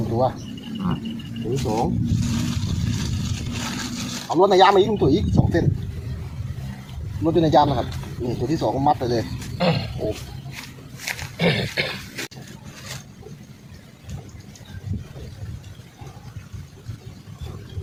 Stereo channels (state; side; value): identical; both; correlation 1.00